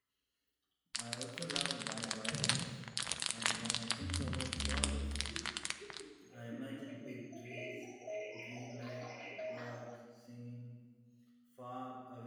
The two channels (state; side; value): identical; both; correlation 1.00